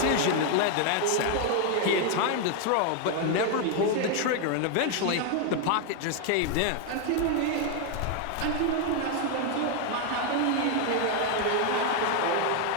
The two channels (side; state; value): both; different; correlation 0.01